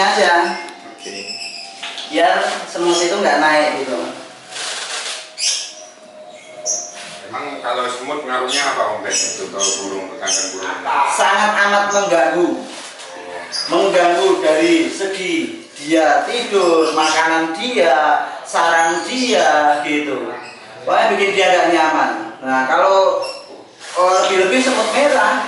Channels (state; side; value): identical; both; correlation 1.00